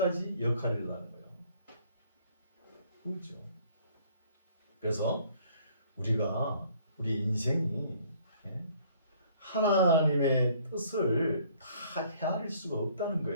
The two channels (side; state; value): both; inverted; correlation -0.59